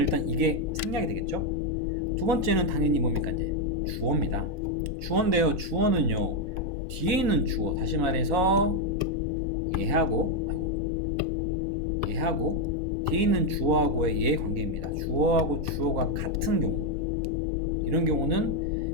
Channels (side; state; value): left; late; 4.0 ms